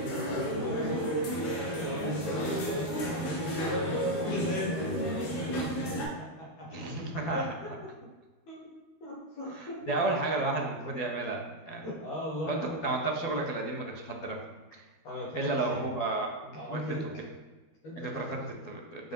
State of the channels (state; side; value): late; right; 13 ms